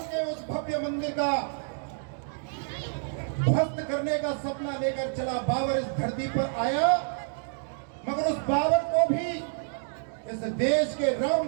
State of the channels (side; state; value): left; silent; digital silence